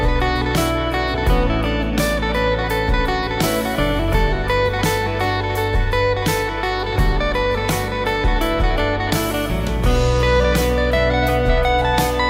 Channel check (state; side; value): identical; both; correlation 1.00